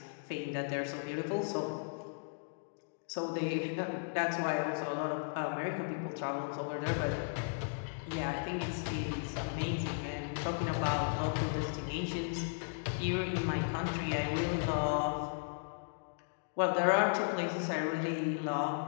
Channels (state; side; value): silent; right; digital silence